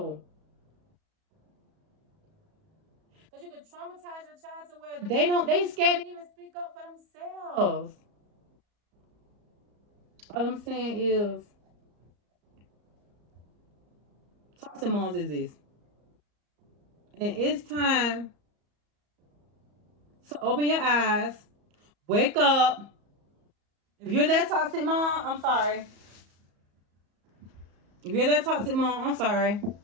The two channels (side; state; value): left; late; 34 ms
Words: Because you can traumatize your child to where they scared to even speak up for themselves. All I'm saying is, toxic moms exist. And it's time to open your eyes, wake up. If you're that toxic mom, I'm sorry. If you're that toxic mom, I'm sorry.